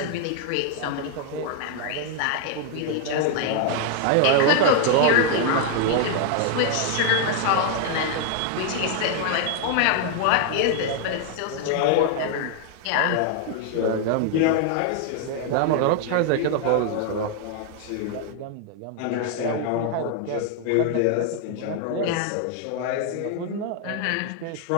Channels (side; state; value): both; different; correlation 0.00